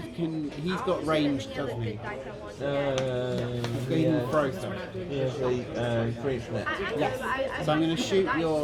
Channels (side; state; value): both; identical; correlation 1.00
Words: He's got range, doesn't he? He can throw stuff. Here's the free net. Yes. So I'm going to shoot